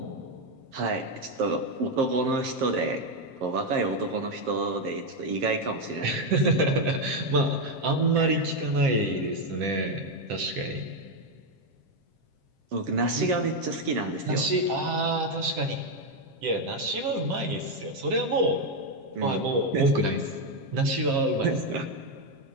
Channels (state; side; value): late; left; 7.5 ms